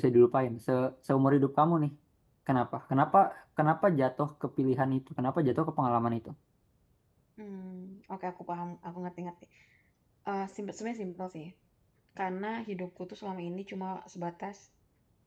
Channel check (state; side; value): identical; both; correlation 1.00